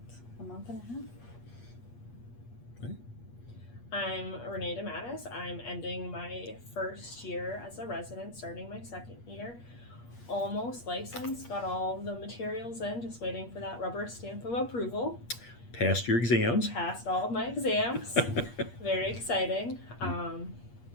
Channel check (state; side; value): late; right; 8.4 ms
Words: a month and a half. I'm Renee DeMattis. I'm ending my first year as a resident, starting my second year. Almost licensed, got all the materials in, just waiting for that rubber stamp of approval. Passed your exams. Passed all of my exams. Very exciting.